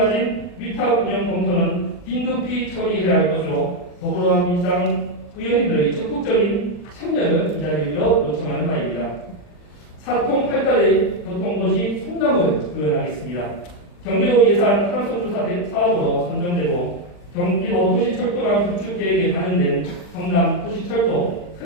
위탁 운영 검토는 긴급히 처리해야 할 것으로 더불어민주당 의원님들의 적극적인 참여를 이 자리에 빌어 요청하는 바입니다. 사통팔달의 교통도시 성남을 구현하겠습니다. 경기도 예산 타당성조사 사업으로 선정되고 경기도 도시철도망 구축 계획에 반영된 성남 도시철도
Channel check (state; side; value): late; right; 40 ms